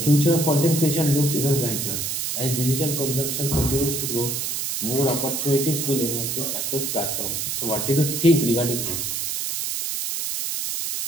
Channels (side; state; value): right; noise; hiss, 2 dB below the sound